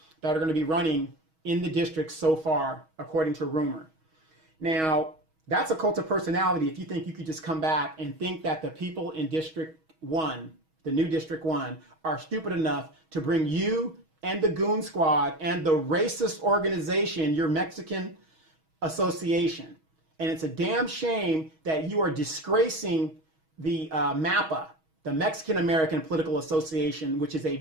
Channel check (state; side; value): late; left; 6.3 ms